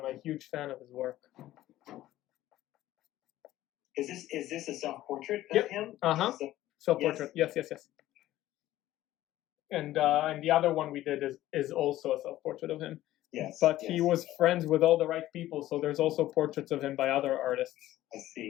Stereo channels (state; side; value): quieter; right; 14.7 dB